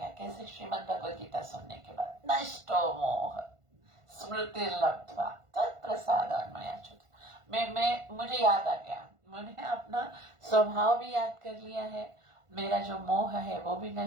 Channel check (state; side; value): late; left; 1.5 ms